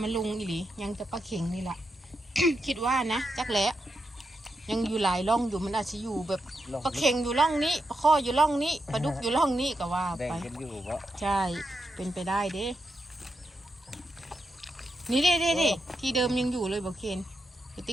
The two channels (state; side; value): normal; both; correlation 0.85